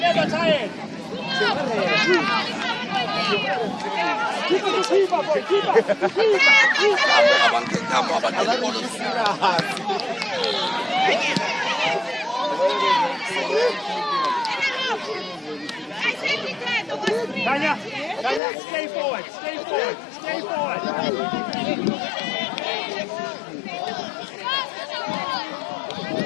tired! Keep it, keep up, boy! Keep up! Tanya, stay forward, stay forward, stay forward.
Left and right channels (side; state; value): right; drops out; at 18.4 s